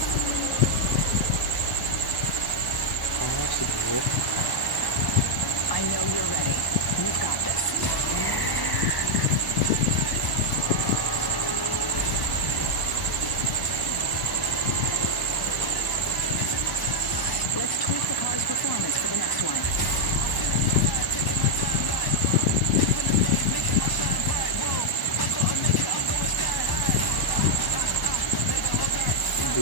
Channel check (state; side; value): late; right; 1.1 ms